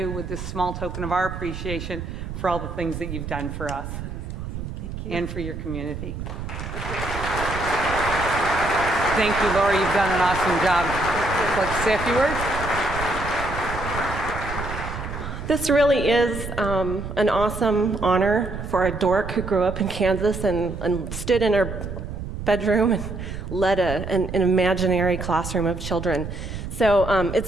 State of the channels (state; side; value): noise; right; rumble, 7 dB below the sound